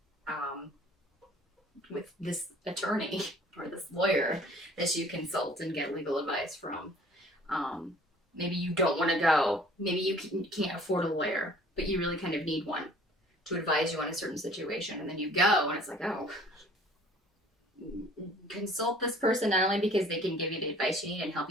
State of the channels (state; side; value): normal; both; correlation 0.52